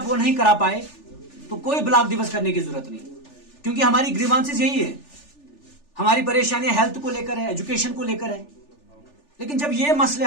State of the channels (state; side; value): late; right; 3.4 ms